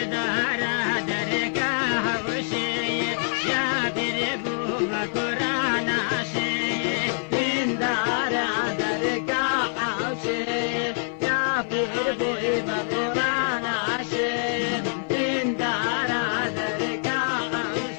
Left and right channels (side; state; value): right; silent; 55 dB below the other